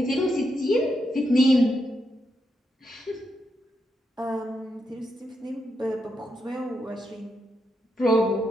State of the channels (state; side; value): normal; both; correlation 0.83